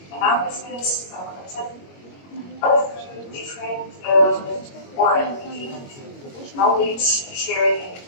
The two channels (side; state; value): right; late; 22 ms